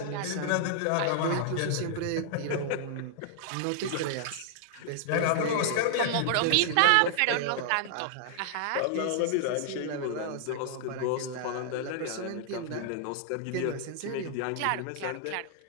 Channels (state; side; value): different; both; correlation -0.01